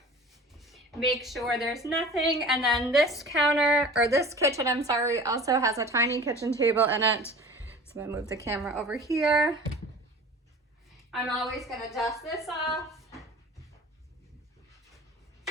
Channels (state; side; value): normal; both; correlation 0.41